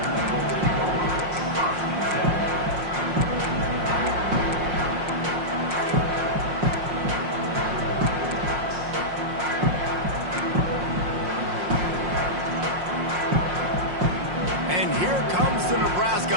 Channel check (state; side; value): late; left; 5.6 ms